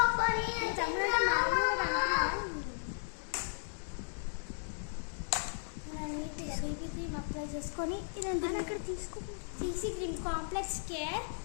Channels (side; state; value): right; silent; digital silence